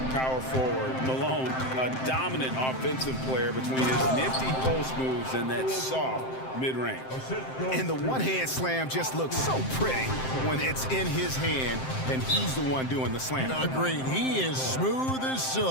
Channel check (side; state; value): right; late; 7.7 ms